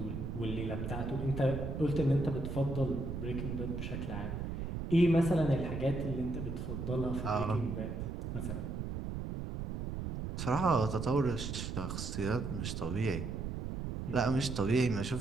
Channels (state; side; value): noise; right; rumble, 4 dB below the sound